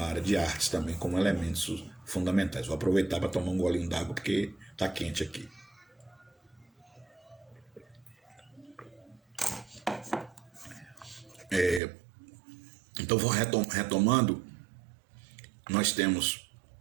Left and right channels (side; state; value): left; drops out; at 11.8 s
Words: área de artes também, como elementos fundamentais. Vou aproveitar para tomar um golinho d'água porque está quente aqui. Então, retomando, nós